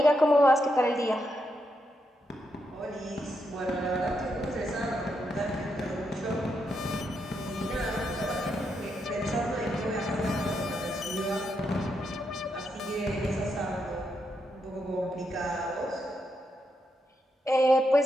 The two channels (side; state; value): both; normal; correlation 0.82